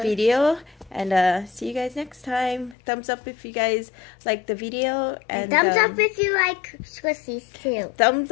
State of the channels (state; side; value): drops out; right; at 2.8 s